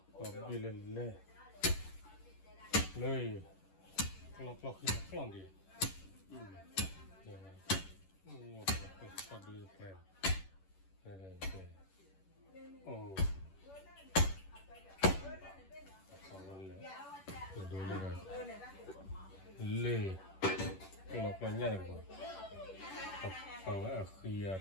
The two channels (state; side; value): late; right; 11 ms